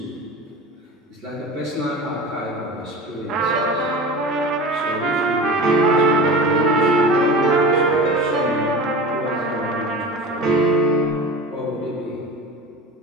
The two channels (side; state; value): both; normal; correlation 0.33